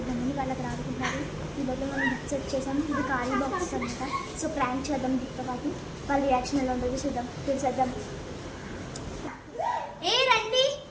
వాళ్ళకి రాడుకుంటారు. ఈరోజు మనం గిఫ్ట్ సెట్ చేసాం. ఇది ఖాళీ బాక్స్ అనమాట. సో ప్రాంక్ చేద్దాం గిఫ్ట్ పార్టీ. వాళ్ళ రియాక్షన్ ఎలా ఉంటుందో చూద్దాం, తెలిసేద్దాం. ఏ రండి.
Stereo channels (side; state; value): both; identical; correlation 1.00